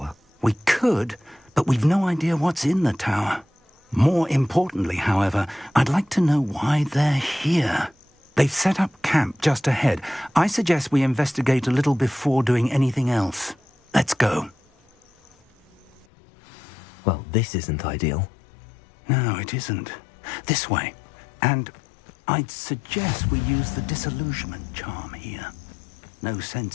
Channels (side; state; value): right; drops out; at 16.1 s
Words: We could, but we've no idea what's in the tower. More importantly, however, I'd like to know why they're here. They've set up camp just ahead. I suggest we investigate a little before doing anything else. Let's go. Well, this isn't ideal. No, it isn't. This way. And I'd suggest we use the disillusionment charm here. No